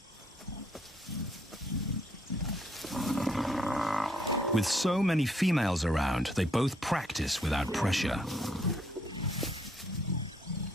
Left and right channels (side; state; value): both; normal; correlation 0.70